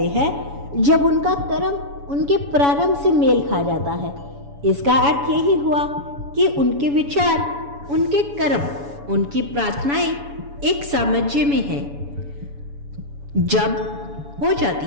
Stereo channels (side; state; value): left; late; 7.1 ms